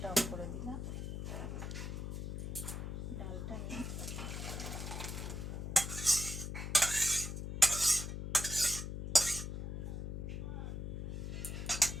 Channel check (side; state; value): left; noise; hum, 4 dB below the sound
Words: অফ করে দিলাম। ডালটা